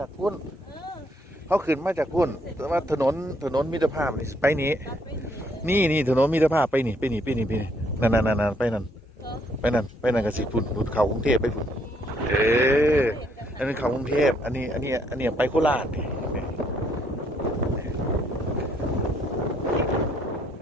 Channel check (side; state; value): both; normal; correlation 0.69